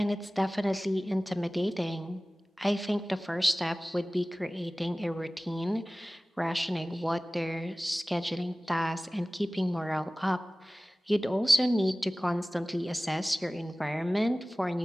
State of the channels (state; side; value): normal; both; correlation 0.98